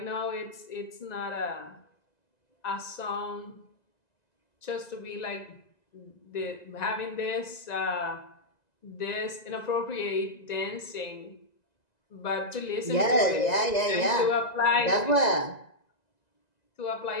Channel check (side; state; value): right; late; 1.9 ms